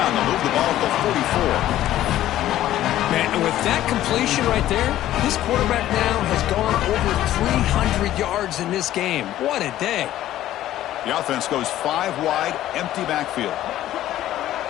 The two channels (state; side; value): quieter; right; 13.4 dB